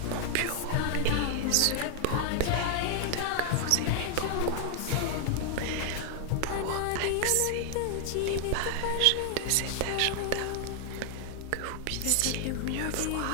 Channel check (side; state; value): both; different; correlation 0.00